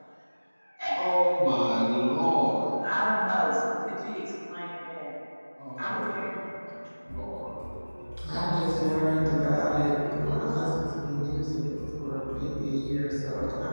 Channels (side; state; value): both; inverted; correlation -1.00